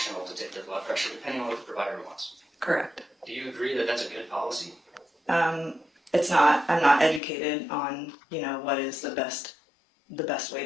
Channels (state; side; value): drops out; right; at 7.2 s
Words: to take their blood pressure depending on what the provider wants. Correct. Do you agree that that's a good policy? It's not, I'm not educated on, you know, what is the best way